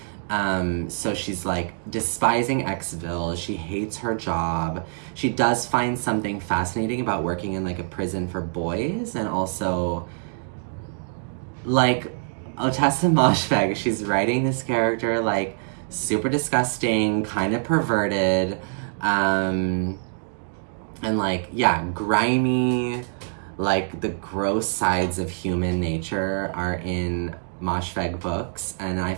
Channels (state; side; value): silent; left; digital silence